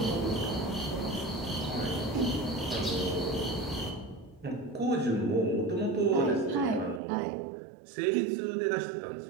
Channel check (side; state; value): left; drops out; at 7.0 s